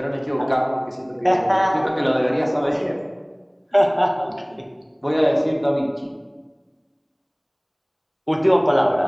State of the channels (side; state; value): both; identical; correlation 1.00